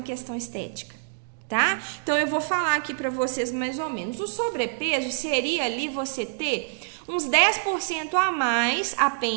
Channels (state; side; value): silent; left; digital silence